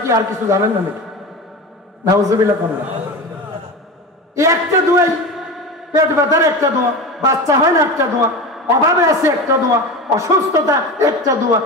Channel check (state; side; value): normal; both; correlation 0.27